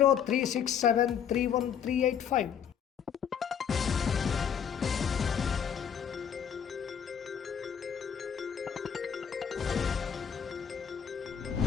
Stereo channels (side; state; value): right; quieter; 8.1 dB